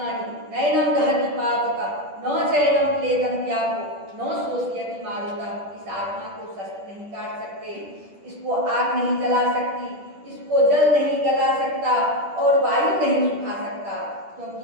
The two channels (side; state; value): left; late; 10 ms